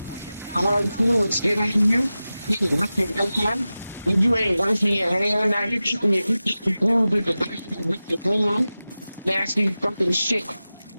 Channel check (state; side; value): inverted; both; correlation -0.95